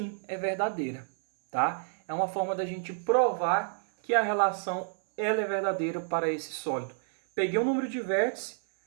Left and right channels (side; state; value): left; silent; 58 dB below the other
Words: é verdadeira, tá? É uma forma da gente provar que a relação ela é verdadeira para esse sólido. Peguei o número de vértices,